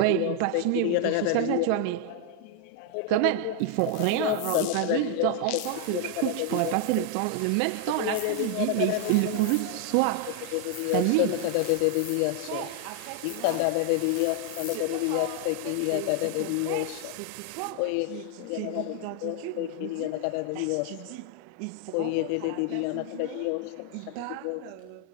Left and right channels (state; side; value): different; both; correlation 0.00